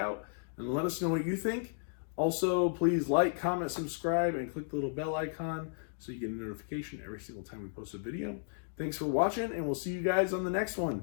and let us know what you think. Also, please like, comment, subscribe, and click the little bell icon so you get a notification every single time we post a video. Thanks for watching, and we'll see you guys on the next one.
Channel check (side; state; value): right; silent; digital silence